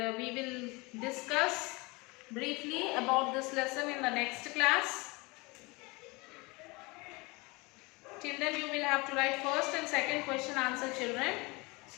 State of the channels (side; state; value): right; quieter; 25.5 dB